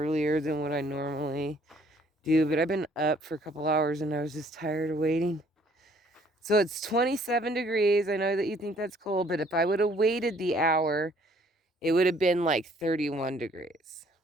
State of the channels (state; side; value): normal; both; correlation 0.61